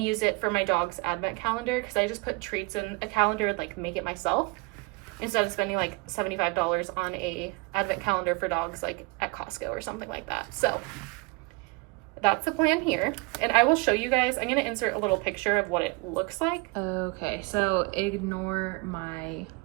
use it for my dog's advent calendar, because I just put treats in a calendar and like make it myself, instead of spending like $75 on a advent calendar for dogs like at Costco or something like that. So that's the plan here. And I will show you guys, I'm going to insert a little picture of what it looks like. Okay, so ignore my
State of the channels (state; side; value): quieter; left; 28.3 dB